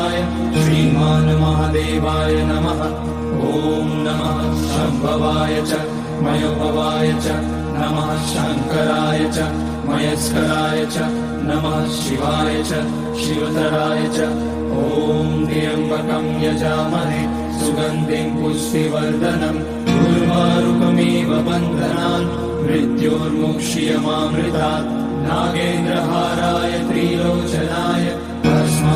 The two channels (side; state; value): both; identical; correlation 1.00